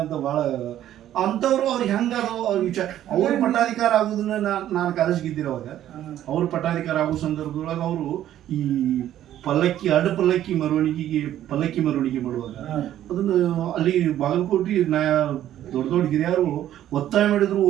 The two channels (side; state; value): left; quieter; 12.0 dB